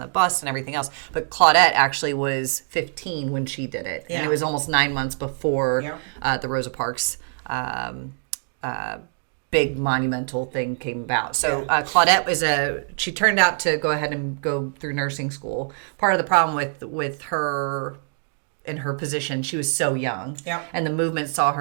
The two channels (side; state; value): left; silent; 63 dB below the other